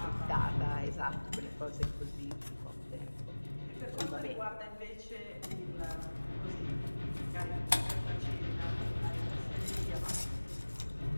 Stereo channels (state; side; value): inverted; both; correlation -1.00